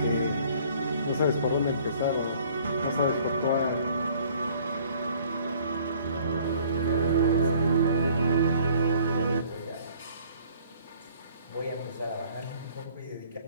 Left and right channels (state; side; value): inverted; both; correlation -0.56